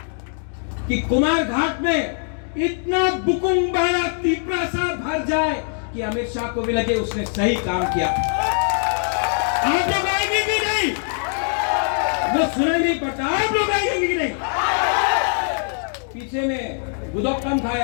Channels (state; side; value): silent; right; digital silence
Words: कि कुमारघाट में इतना बुकुंबाड़ा तिपरासा भर जाए कि अमित शाह को भी लगे उसने सही काम किया। आप लोग आएंगे कि नहीं? वो सुनाई नहीं पड़ता। आप लोग आएंगे कि नहीं? पीछे में गुदक कम